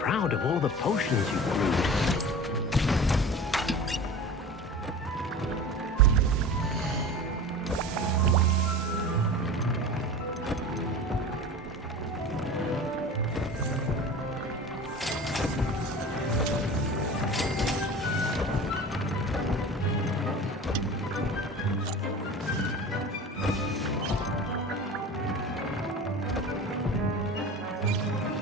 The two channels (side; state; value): both; normal; correlation 0.35